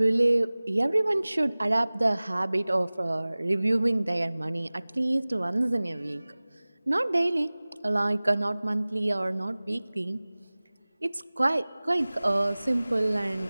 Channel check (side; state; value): both; inverted; correlation -1.00